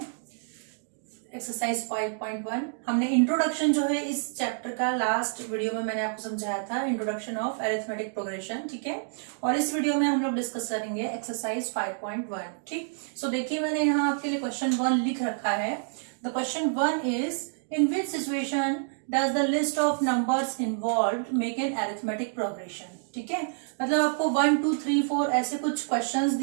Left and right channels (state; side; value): silent; left; digital silence